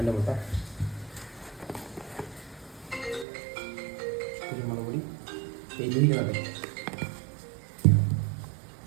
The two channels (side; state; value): left; drops out; at 3.2 s